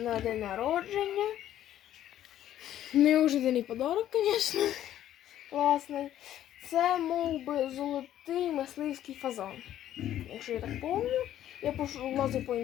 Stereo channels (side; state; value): right; quieter; 11.9 dB